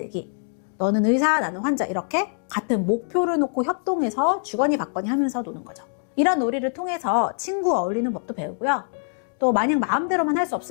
너는 의사, 나는 환자 이렇게 같은 목표를 놓고 협동해서 주거니 받거니 하면서 노는 거죠. 이런 놀이를 통해서 친구와 어울리는 법도 배우고요. 또 마냥 마음대로만 할 수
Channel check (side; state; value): right; silent; 63 dB below the other